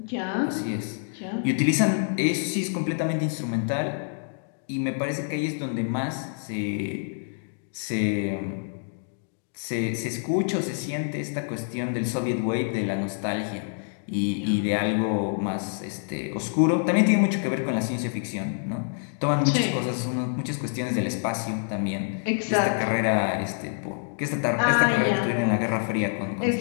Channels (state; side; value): silent; right; digital silence